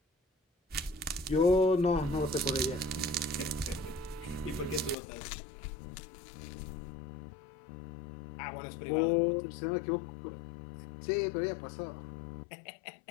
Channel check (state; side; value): drops out; right; at 5.0 s